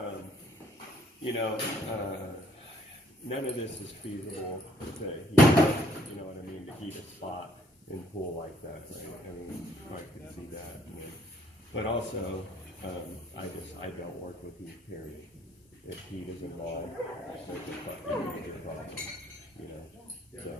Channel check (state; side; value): normal; both; correlation 0.64